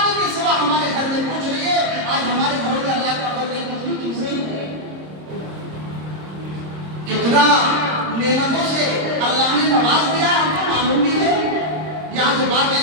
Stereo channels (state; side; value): late; left; 26 ms